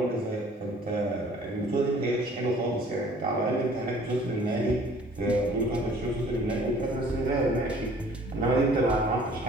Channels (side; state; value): both; normal; correlation 0.53